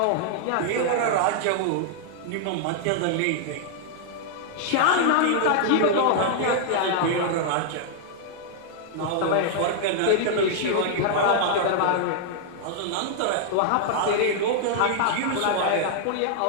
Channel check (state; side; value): different; both; correlation -0.01